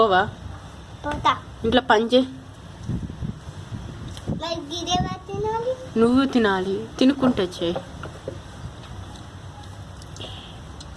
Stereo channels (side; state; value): both; identical; correlation 1.00